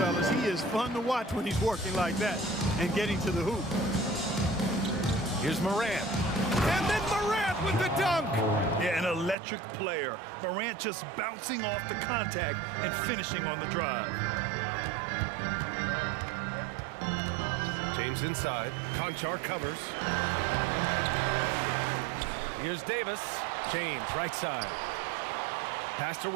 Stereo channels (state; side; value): drops out; left; at 9.3 s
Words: he is fun to watch when he's working like that and getting to the hoop. Here's Morant. And then Morant with the dunk. Yeah, an electric player. Morant just bouncing off the contact and finishing on the drive. James inside. Conchar covers. Here's Davis. James, right side. Pass to